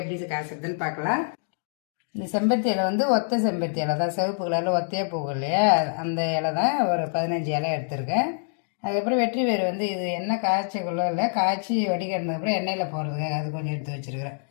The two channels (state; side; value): silent; right; digital silence